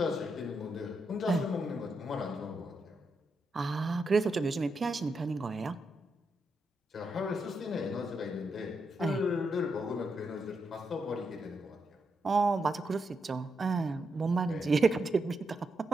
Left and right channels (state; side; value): normal; both; correlation 0.83